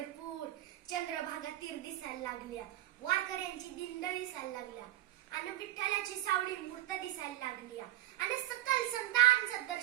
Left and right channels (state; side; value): quieter; left; 14.5 dB